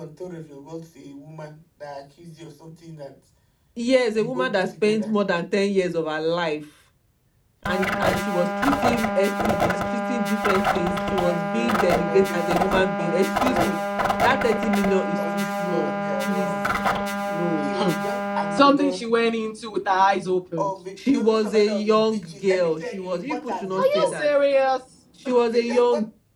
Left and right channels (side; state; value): both; identical; correlation 1.00